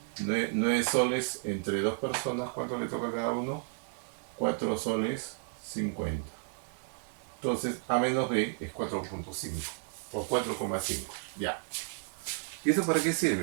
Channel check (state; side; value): silent; left; 56 dB below the other